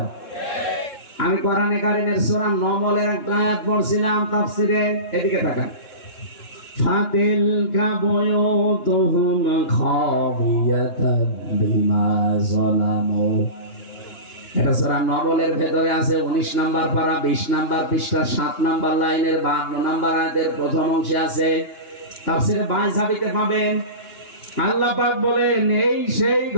আমি কোরআনে কারিমের সূরা নমলের একটা আয়াত পড়ছিলাম তাফসীরে, এদিকে তাকান। ফাতিলকা বুয়ুতুহুম খাবিয়াতান বিমা যালামু। এটা সূরা নমলের ভেতরে আছে 19 নাম্বার পারা 20 নাম্বার পৃষ্ঠা 7 নাম্বার লাইনের 52 নাম্বার আয়াতের প্রথম অংশে আছে। তাফসীরে 22 ঝাবিতে পাবেন। আল্লাহ পাক বলেন এই সেই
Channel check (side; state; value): right; late; 2.9 ms